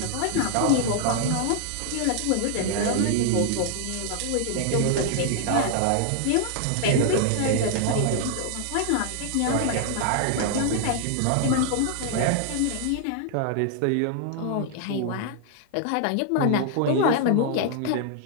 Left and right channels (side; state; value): both; different; correlation 0.00